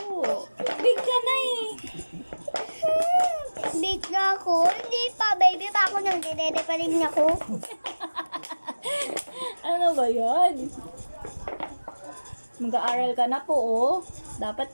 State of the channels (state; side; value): inverted; both; correlation -1.00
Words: Big ka na eh. Big na ako. Hindi pa, baby pa ako. Nagdidede pa rin ako. Ano ba yan? Mag-aaral ka na po, oh.